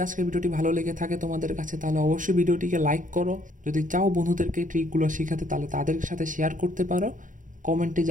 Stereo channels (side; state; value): left; late; 0.38 ms